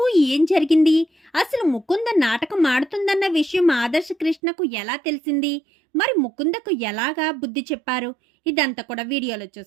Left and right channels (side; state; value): left; drops out; at 4.4 s